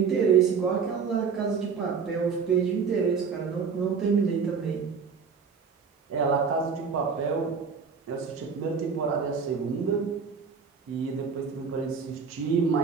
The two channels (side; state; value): left; quieter; 5.8 dB